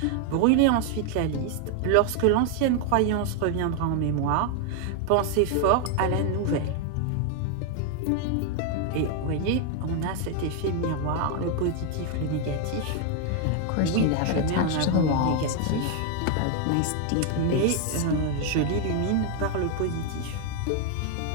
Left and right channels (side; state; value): both; different; correlation 0.00